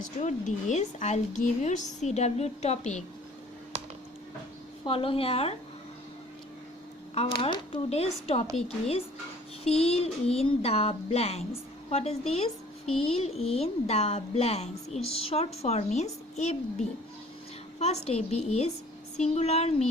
this, I'll give you CW topic. Follow here. Our today's topic is fill in the blanks. What is this? Fill in the blanks. Its short form is FB. First FB is singular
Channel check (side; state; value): both; normal; correlation 0.52